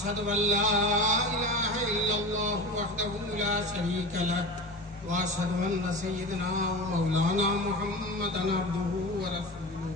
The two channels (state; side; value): normal; both; correlation 0.30